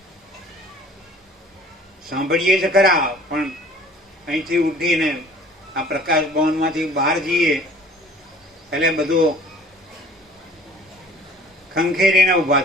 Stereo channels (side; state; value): both; normal; correlation 0.50